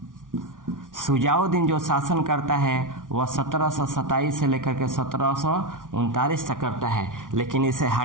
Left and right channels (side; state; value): left; late; 0.88 ms